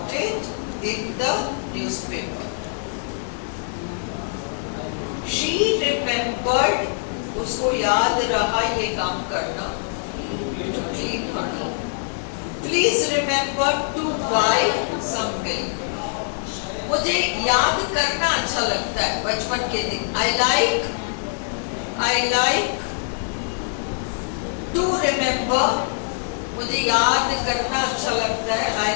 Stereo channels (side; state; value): right; silent; digital silence